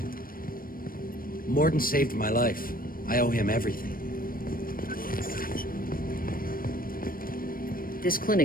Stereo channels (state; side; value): late; right; 0.41 ms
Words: Morden saved my life. I owe him everything. This